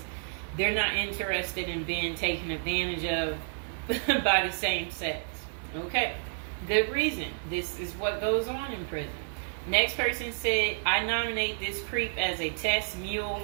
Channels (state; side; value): silent; left; 58 dB below the other